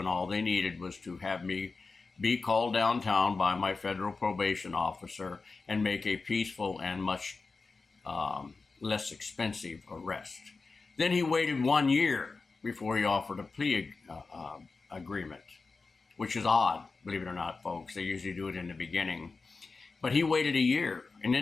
all they needed was to have me be called downtown by my federal probation officer and make a peaceful and much less expensive arrest. Then he waited 1 year before he offered a plea agreement, which is odd, believe it or not, folks. They usually do it in the beginning. But he waited a year and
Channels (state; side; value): quieter; right; 4.1 dB